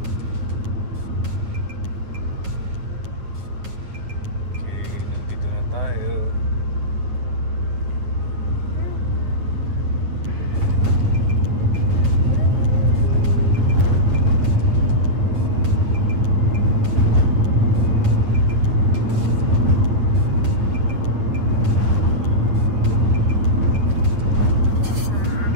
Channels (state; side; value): late; left; 9.2 ms